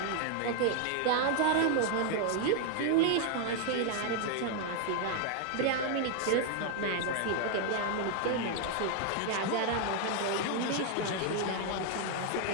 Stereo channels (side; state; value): both; different; correlation 0.00